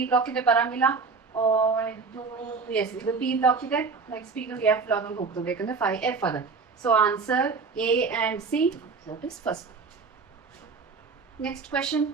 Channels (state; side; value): quieter; left; 4.7 dB